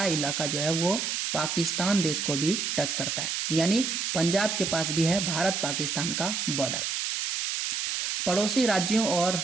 इलाका जो है वो पाकिस्तान देश को भी टच करता है, यानी पंजाब के पास भी है भारत पाकिस्तान का बॉर्डर। पड़ोसी राज्यों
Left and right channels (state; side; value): noise; right; hiss, 1 dB below the sound